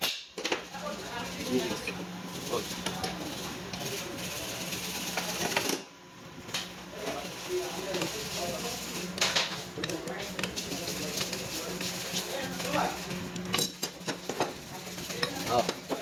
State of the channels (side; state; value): both; identical; correlation 1.00